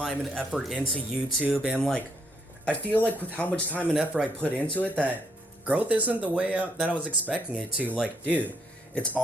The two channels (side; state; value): both; normal; correlation 0.73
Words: and effort into YouTube, and like I feel like with how much time and effort I put into it, that growth isn't the way that I was expecting it to. Like, dude, it's